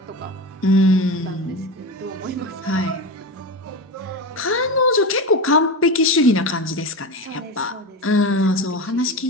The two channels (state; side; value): normal; both; correlation 0.23